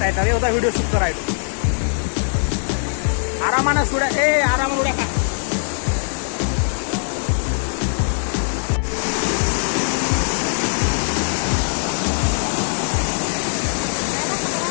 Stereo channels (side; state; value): right; silent; 65 dB below the other